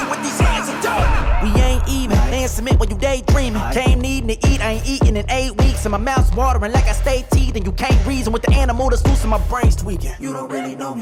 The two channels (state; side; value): identical; both; correlation 1.00